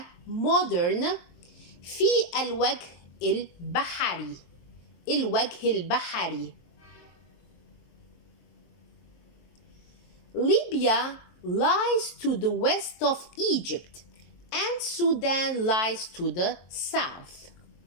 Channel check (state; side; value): late; right; 23 ms